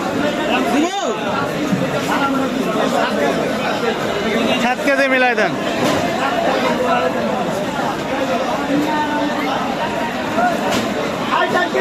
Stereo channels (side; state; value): both; identical; correlation 1.00